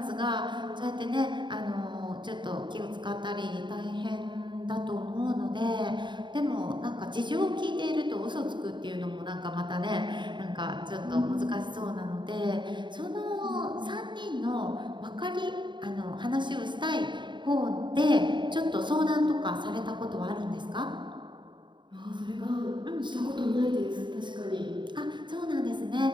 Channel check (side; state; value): left; late; 0.23 ms